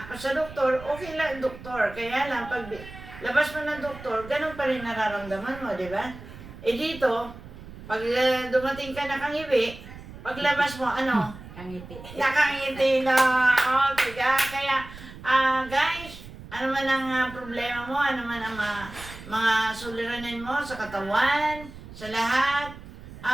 sa doktor, okay lang doktor. Kaya lang, pag labas mo ng doktor, ganun pa rin nararamdaman mo, di ba? Dito, pag dumating ka nakangiwi, paglabas mo, Kangiti. nakangiti na. Okay, kaya, guys, Ano man ang problema mo, ano man ang mga suliranin mo sa katawan, sa lahat,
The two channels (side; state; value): right; noise; rumble, 15 dB below the sound